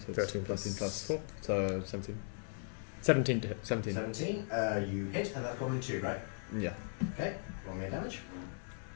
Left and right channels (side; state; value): right; silent; 53 dB below the other